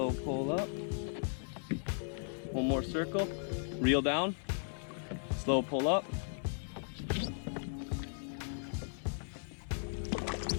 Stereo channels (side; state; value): right; silent; digital silence